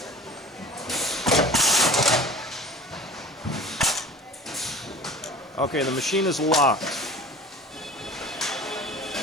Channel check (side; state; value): both; normal; correlation 0.40